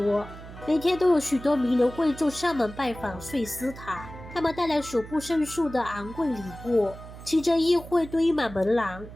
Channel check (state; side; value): noise; right; hum, 15 dB below the sound